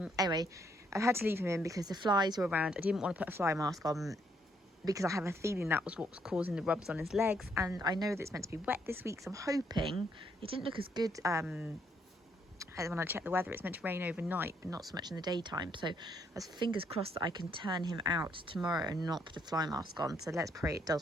I had to leave him in because the flies were around. I didn't want to put a fly mask on because I have a feeling that was what was causing the rubs on his legs, and I know that it's meant to be wet this week, so I'm hoping it didn't look as good when I checked the weather. It's meant to rain overnight, but not so much in the daytime, so I was fingers crossed that I can turn him out tomorrow and not put a fly mask on. So let's pray it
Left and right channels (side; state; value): both; normal; correlation 0.72